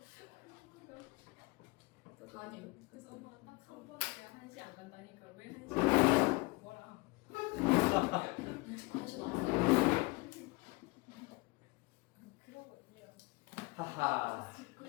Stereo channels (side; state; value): right; quieter; 25.1 dB